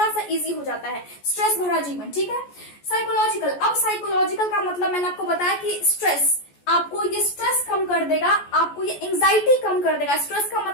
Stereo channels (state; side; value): late; right; 14 ms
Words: सा इजी हो जाता है, स्ट्रेस भरा जीवन। ठीक है, साइकोलॉजिकल, अब साइकोलॉजिकल का मतलब मैंने आपको बताया कि स्ट्रेस आपको ये स्ट्रेस कम कर देगा, आपको ये एंजाइटी कम कर देगा। स्ट्रेस का